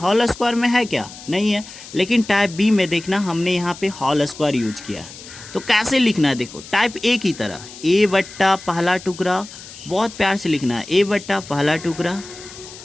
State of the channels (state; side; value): noise; left; hiss, 16 dB below the sound